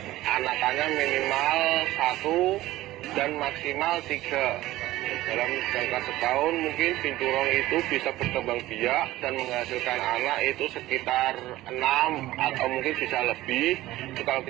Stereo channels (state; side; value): quieter; left; 16.4 dB